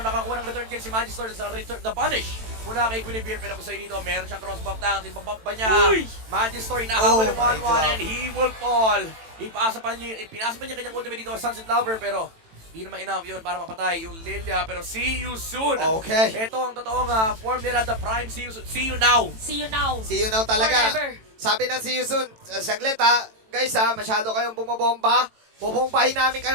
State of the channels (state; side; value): late; left; 18 ms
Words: nakakuha ng return kill si Magistor sa return, the punish. Mula kay Guinevere, pero kung sa'yo dito, meron siyang cross-buff down. Tinpabump ba niya? Magistor, inahabol yung 1-1 and he will fall. Pinasa pa niya kanyang ultimate dito sa Sunset Lover, pero hindi naman enough yun para mapatay yung Lilia. Pero see you soon. Okay. Ito ang totoong form nila, the prime see you soon. See you now. See you now. See you now talaga. Forever. Sabi ng See You Soon, saglit ha, guys ha, masyado kayong bumabomba. Bubombahin namin